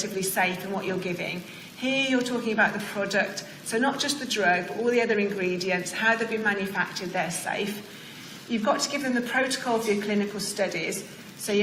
safe in what you're giving. Here you're talking about the product, so not just the drug, but all the other ingredients, how they've been manufactured, they're safe. You've got to give them the protocol for your clinical studies, so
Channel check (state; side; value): identical; both; correlation 1.00